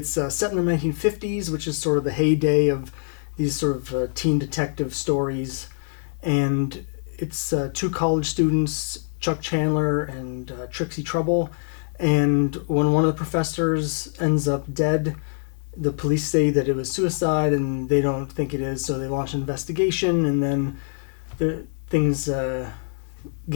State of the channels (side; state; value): right; silent; digital silence